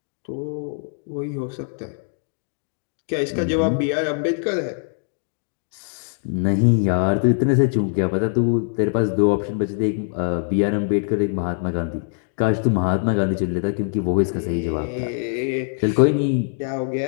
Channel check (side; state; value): right; silent; digital silence